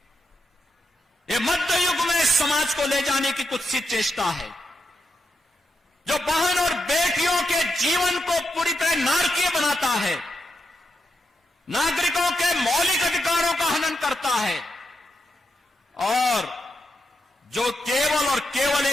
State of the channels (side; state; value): both; normal; correlation 0.84